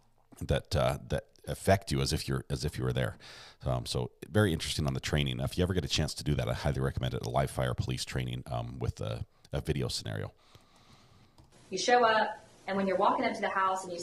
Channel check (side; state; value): both; identical; correlation 1.00